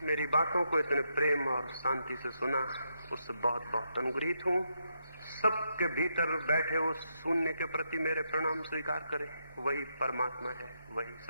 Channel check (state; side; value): inverted; both; correlation -0.80